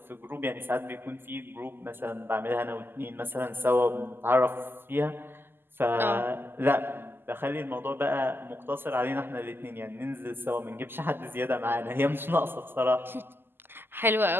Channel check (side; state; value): left; late; 0.10 ms